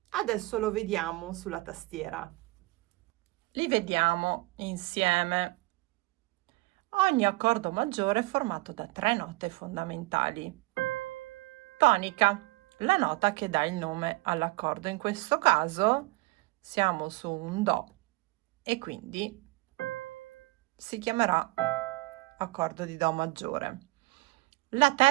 Adesso lo vediamo sulla tastiera. Li vediamo insieme. Ogni accordo maggiore è formato da 3 note fondamentali. Tonica, la nota che dà il nome all'accordo. In questo caso siamo su un Do e quindi si chiamerà accordo di Do maggiore. La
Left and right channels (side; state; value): left; quieter; 22.8 dB